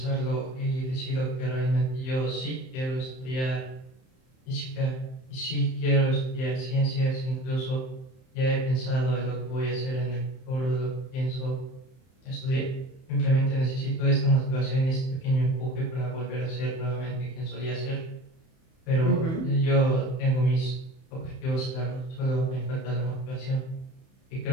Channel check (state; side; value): late; right; 31 ms